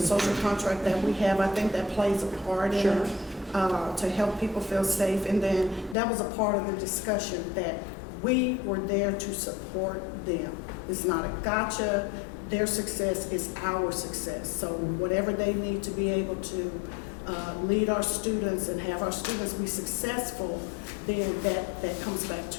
social contract that we have. I think that plays a part in Sure. it to help people feel safe. And then that was a part of the discussion that we were there to support them. It's not a gotcha. Their success is our success. So whatever they need to be able to lead our students and have our students be successful, then that comes back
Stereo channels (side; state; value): right; drops out; at 6.0 s